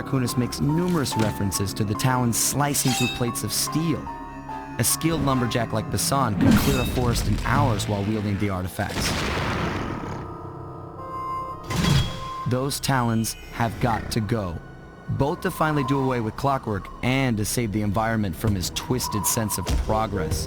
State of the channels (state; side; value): identical; both; correlation 1.00